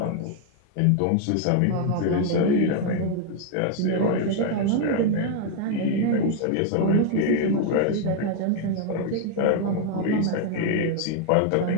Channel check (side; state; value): both; different; correlation 0.00